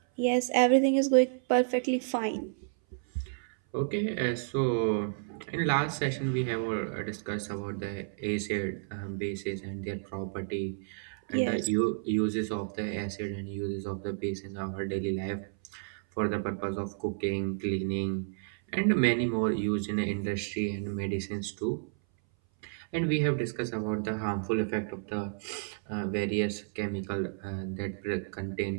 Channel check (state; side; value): silent; left; 57 dB below the other